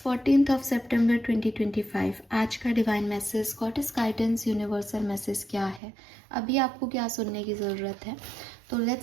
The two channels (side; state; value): left; drops out; at 5.8 s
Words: सितंबर 2025। आज का divine message, goddess guidance, universal message क्या है, अभी आपको क्या सुनने की ज़रूरत है। तो